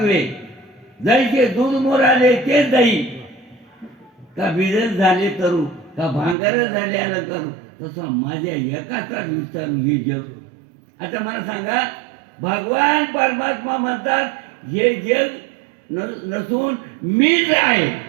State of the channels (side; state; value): left; drops out; at 6.4 s